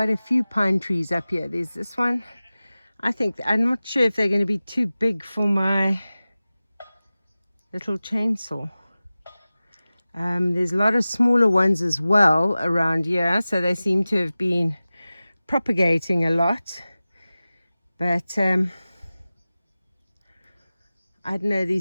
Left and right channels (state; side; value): inverted; both; correlation -0.97